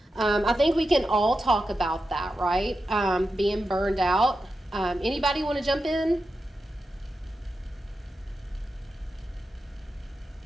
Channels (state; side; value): normal; both; correlation 0.90